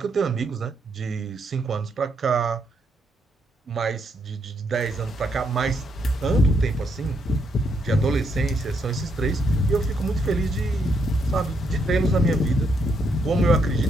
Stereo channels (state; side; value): normal; both; correlation 0.76